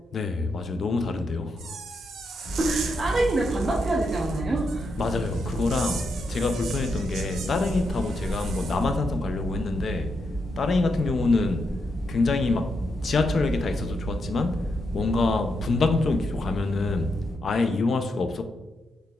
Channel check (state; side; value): normal; both; correlation 0.83